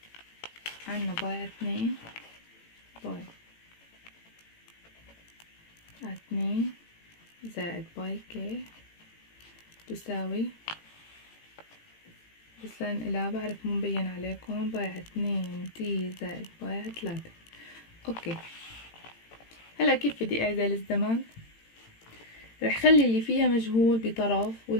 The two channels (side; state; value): right; late; 18 ms